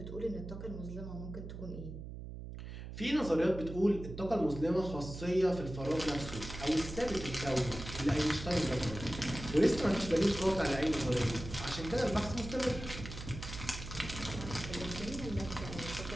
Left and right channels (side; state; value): right; noise; hum, 10 dB below the sound